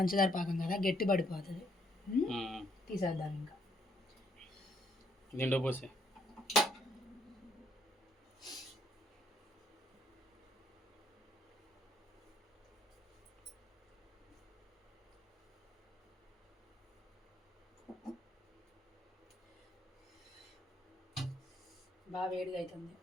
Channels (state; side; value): normal; both; correlation 0.70